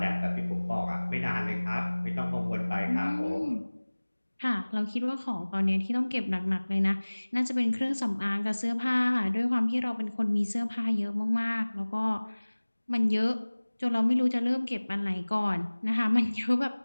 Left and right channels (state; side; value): inverted; both; correlation -1.00